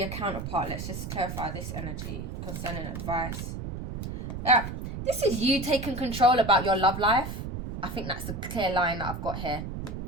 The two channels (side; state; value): right; noise; rumble, 6 dB below the sound